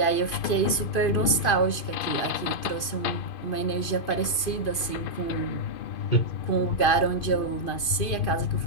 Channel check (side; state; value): right; late; 2.5 ms